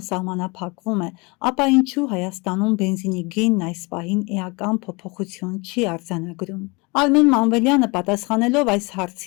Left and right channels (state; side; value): quieter; right; 27.6 dB